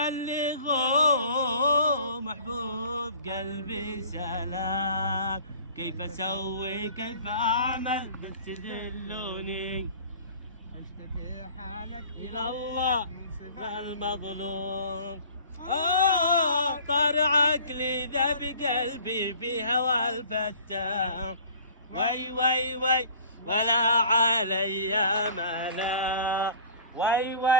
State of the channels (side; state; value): both; inverted; correlation -0.46